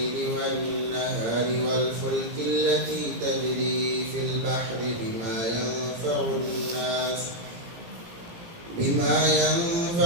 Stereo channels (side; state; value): left; late; 17 ms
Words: والنهار والفلك التي تجري في البحر بما ينفع